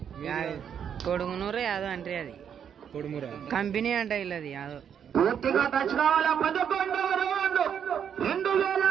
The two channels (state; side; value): quieter; left; 8.3 dB